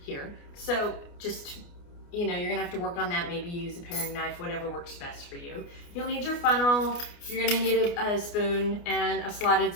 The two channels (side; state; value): right; late; 29 ms